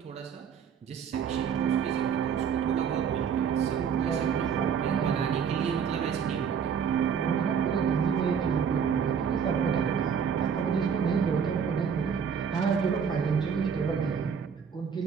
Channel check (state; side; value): quieter; left; 7.1 dB